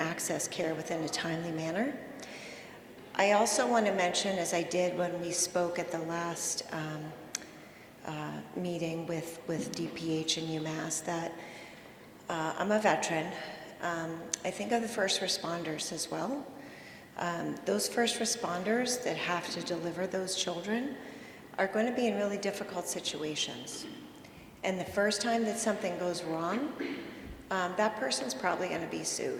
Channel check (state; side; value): identical; both; correlation 1.00